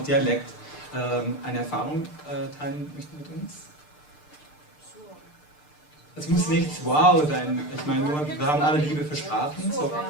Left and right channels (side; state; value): right; late; 6.7 ms